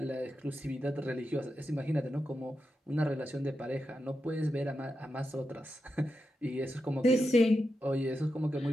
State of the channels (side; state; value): both; normal; correlation 0.88